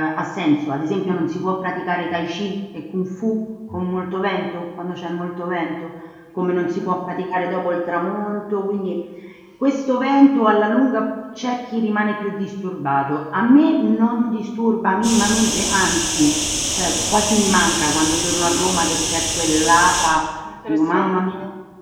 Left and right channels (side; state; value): both; identical; correlation 1.00